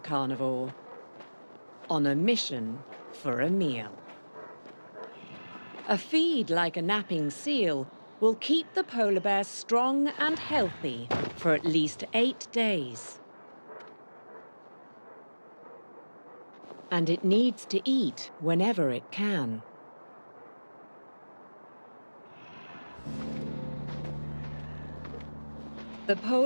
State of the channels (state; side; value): inverted; both; correlation -1.00